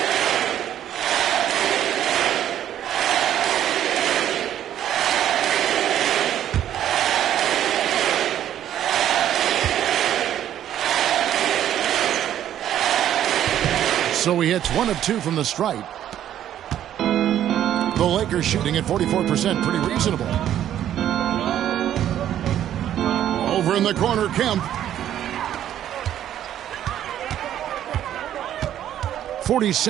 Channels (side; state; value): left; quieter; 11.2 dB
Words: So he hits 1 of 2 from the stripe. The Lakers shooting at 44%, pretty reasonable. Over in the corner, Kemp.